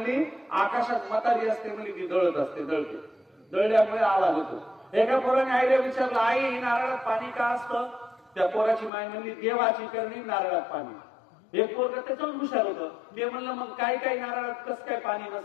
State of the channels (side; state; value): right; drops out; at 8.9 s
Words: आकाशात मतारी असते म्हणली, ती दळत असते, दळते, दळल्यामुळे आवाज होतो. एका पोराने आईला विचारलं, आई नारळात पाणी का असतं? त्या पोराची माय म्हणली, देवाची करणी नारळात पाणी. एक पोरग त्याच्यावर हुशार होतं. ते म्हणलं मग काही नारळात कस काय पाणी